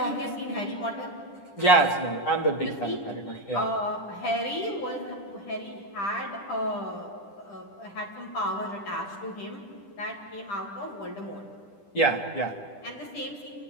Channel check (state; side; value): late; right; 10 ms